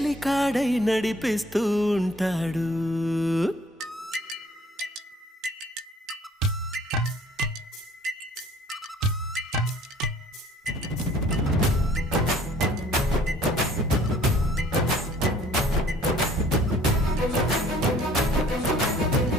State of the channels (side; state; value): both; normal; correlation 0.55